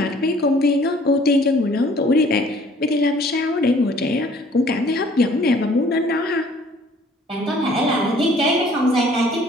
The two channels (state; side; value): normal; both; correlation 0.56